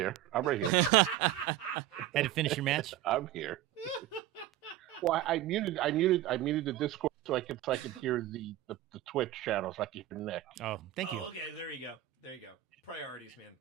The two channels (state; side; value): quieter; left; 13.5 dB